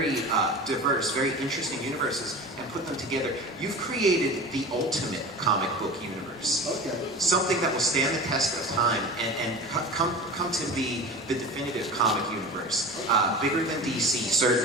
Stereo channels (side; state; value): both; normal; correlation 0.33